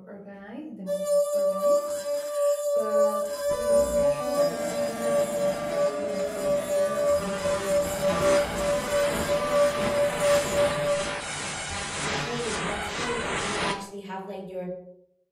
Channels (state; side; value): identical; both; correlation 1.00